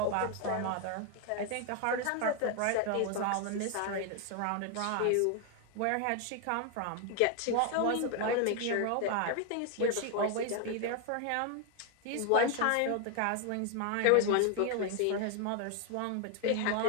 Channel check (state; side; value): different; both; correlation 0.01